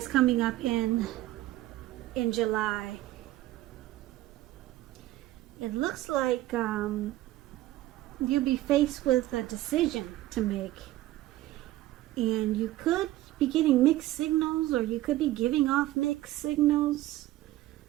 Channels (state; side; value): quieter; left; 15.9 dB